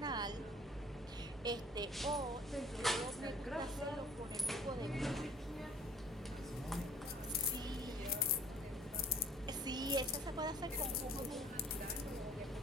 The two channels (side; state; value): both; normal; correlation 0.52